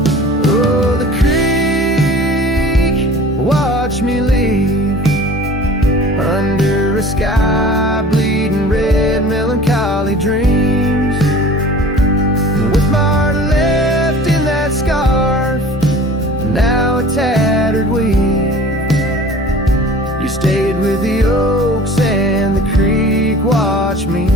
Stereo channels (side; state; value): both; normal; correlation 0.44